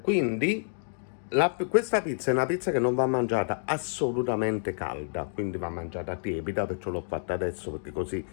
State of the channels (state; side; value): silent; right; digital silence